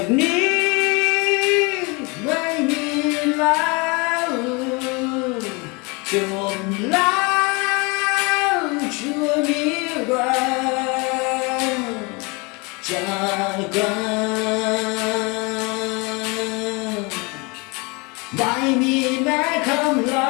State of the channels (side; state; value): right; quieter; 28.7 dB